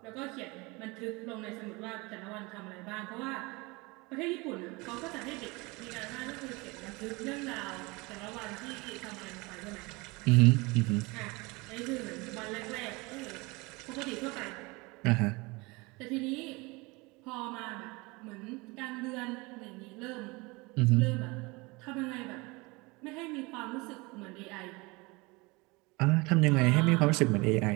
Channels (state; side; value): quieter; left; 25.2 dB